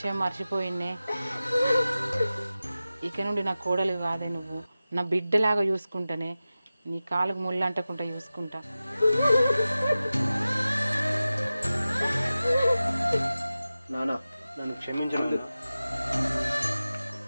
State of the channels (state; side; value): inverted; both; correlation -0.95